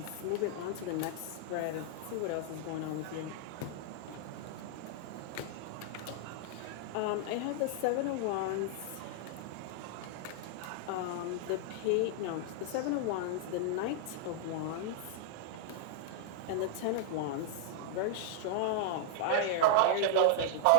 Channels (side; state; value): both; different; correlation -0.01